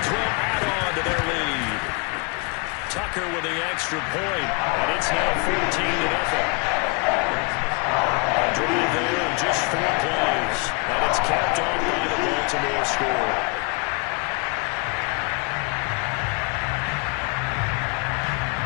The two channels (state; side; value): quieter; right; 32.7 dB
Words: will add on to their lead. Tucker with the extra point, and it's now 14-0. A drive there in just 4 plays, and it's capped off by the Baltimore score.